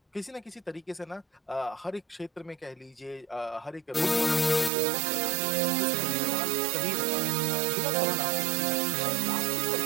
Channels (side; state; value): left; drops out; at 4.7 s